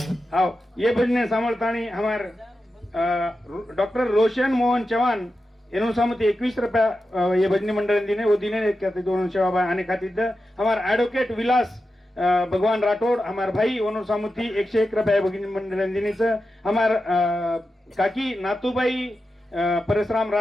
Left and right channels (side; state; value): both; normal; correlation 0.91